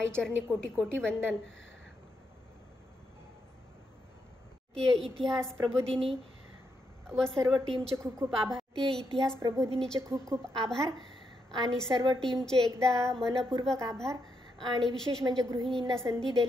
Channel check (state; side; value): normal; both; correlation 0.81